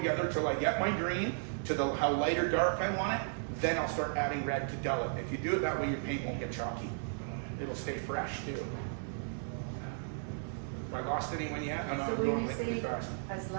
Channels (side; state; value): left; silent; digital silence